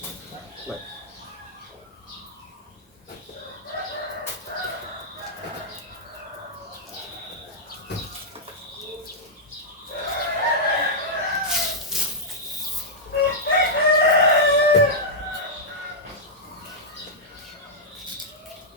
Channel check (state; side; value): normal; both; correlation -0.08